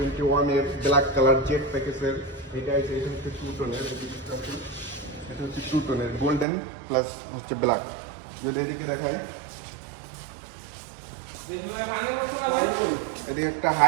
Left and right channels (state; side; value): drops out; left; at 6.5 s